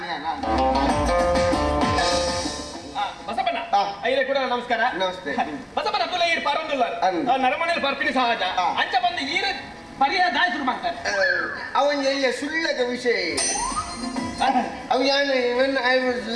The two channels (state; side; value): identical; both; correlation 1.00